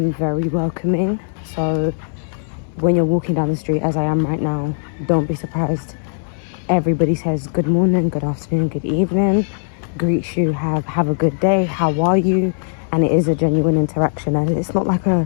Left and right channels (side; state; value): right; silent; 64 dB below the other